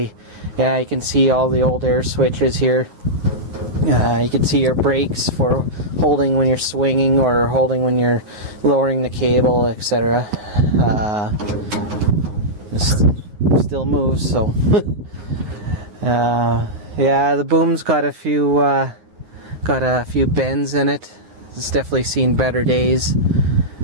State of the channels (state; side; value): late; left; 9.6 ms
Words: yeah, you can see all the old air switches here. You can see your brakes for holding when you're swinging or holding when you're lowering the cable, etc. Still moves, so. Yeah, the boom's got a few bends in it. It's definitely seen better days,